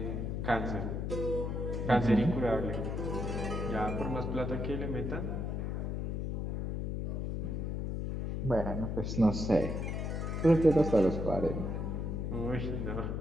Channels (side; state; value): left; noise; hum, 2 dB below the sound